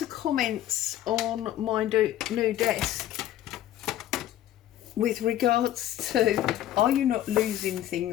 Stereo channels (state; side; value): quieter; right; 12.7 dB